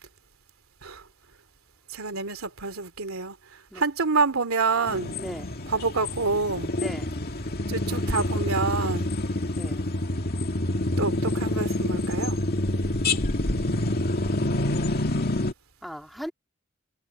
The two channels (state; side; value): normal; both; correlation 0.24